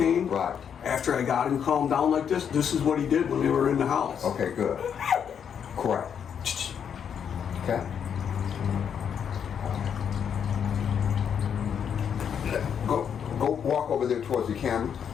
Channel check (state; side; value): quieter; right; 7.9 dB